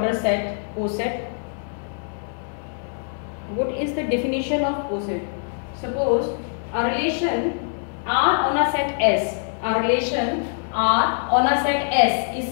set, coset. What is the definition of coset? Suppose a relation R on a set S. A relation R on a set S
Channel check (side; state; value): right; silent; digital silence